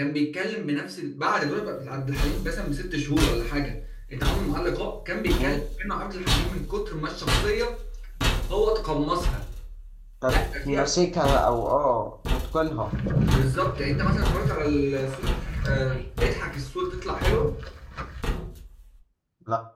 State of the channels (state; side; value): identical; both; correlation 1.00